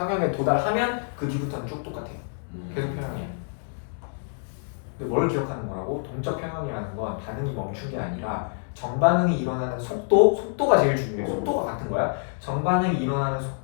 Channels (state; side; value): silent; right; 60 dB below the other